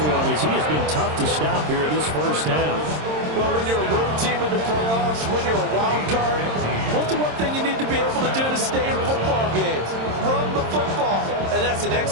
him as he has been tough to stop here in this first half. Well, when you're a road team in the playoffs, when you're a wild card, what's the one thing you need to be able to do to stay in football games? Run the football. And that's an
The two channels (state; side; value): late; left; 26 ms